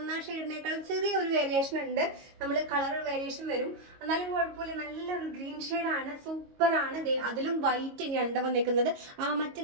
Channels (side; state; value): left; late; 22 ms